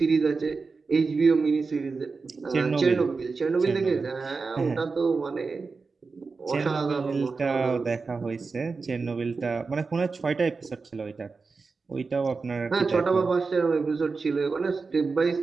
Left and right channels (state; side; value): quieter; left; 4.4 dB